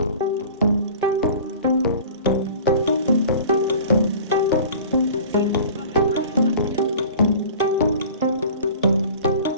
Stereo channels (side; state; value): both; inverted; correlation -0.42